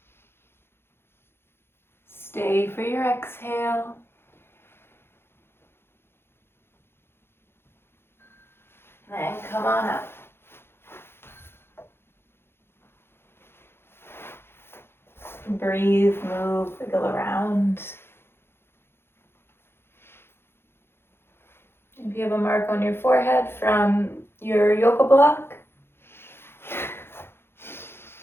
Stay for your exhale. Then come on up. Breathe, move, wiggle around. If you have a mark on your forehead from your yoga block,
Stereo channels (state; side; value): late; right; 0.11 ms